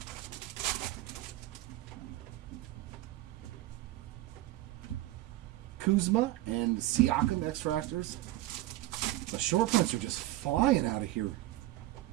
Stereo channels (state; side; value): quieter; left; 16.3 dB